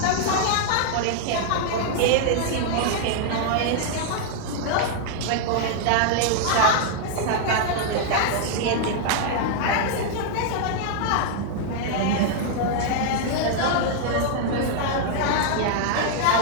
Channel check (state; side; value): different; both; correlation -0.01